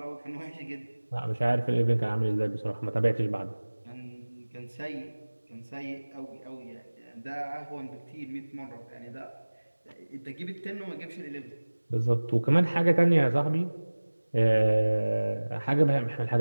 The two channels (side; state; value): both; inverted; correlation -1.00